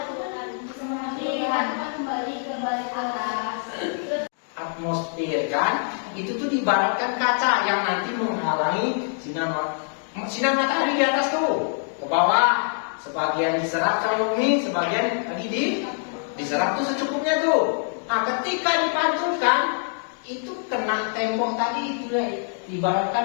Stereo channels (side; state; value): right; silent; 57 dB below the other